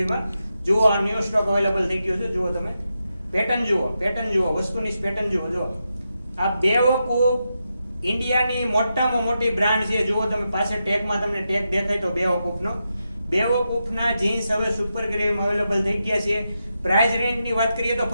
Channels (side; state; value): both; inverted; correlation -0.87